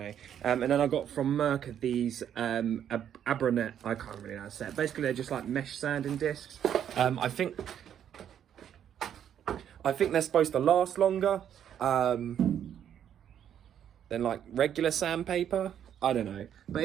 And then I got from Merc these Abranet, I can't really know how to say it. Basically they're just like mesh sanding discs. I think they're supposed to last longer than like regular sandpaper. I don't know, but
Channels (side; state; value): left; quieter; 9.5 dB